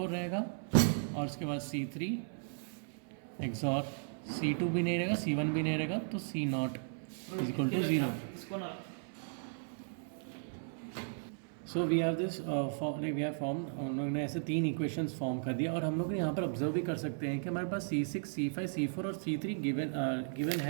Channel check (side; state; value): left; silent; 54 dB below the other